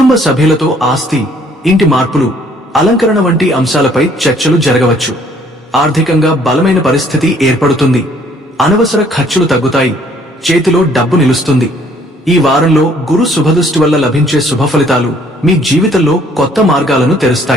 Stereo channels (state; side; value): normal; both; correlation 0.61